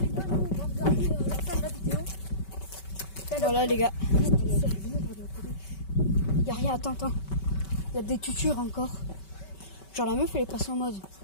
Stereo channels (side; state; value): right; late; 5.2 ms